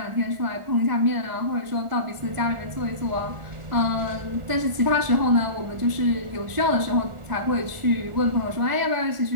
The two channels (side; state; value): left; late; 1.4 ms